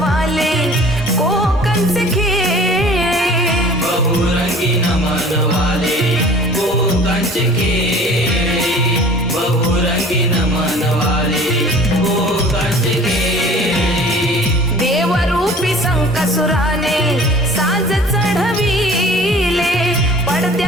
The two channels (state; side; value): normal; both; correlation 0.47